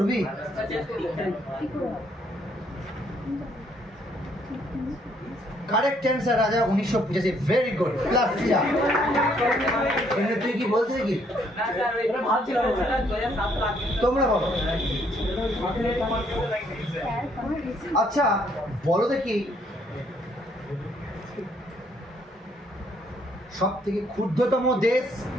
কারেক্ট অ্যান্সার রাজা, 1985। Very good, +4। তুই কি বলছিস কি? তোমরা বলো। আচ্ছা বলো দেখি, সব থেকে ক্ষুদ্রতম দেশ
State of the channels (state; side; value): normal; both; correlation 0.68